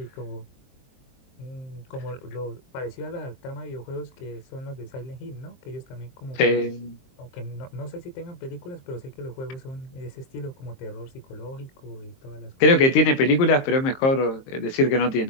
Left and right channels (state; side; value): late; right; 23 ms